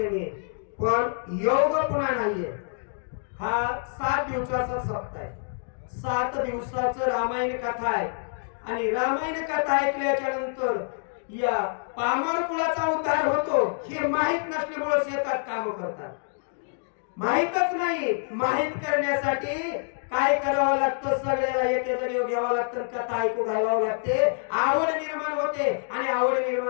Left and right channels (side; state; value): right; silent; digital silence